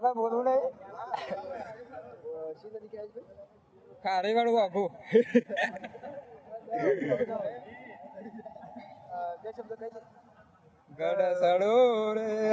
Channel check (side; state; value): both; identical; correlation 1.00